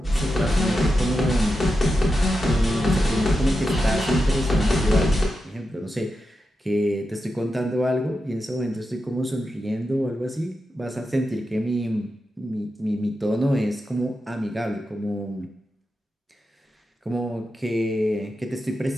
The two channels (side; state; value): both; normal; correlation 0.89